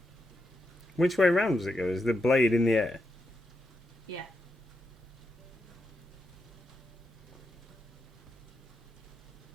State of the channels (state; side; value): normal; both; correlation 0.84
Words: Which way round does it go? Is the blade in the air? Yeah.